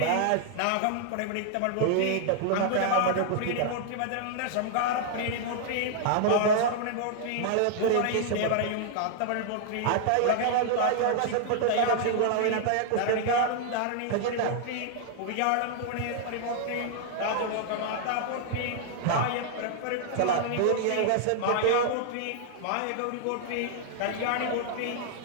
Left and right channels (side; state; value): both; different; correlation 0.00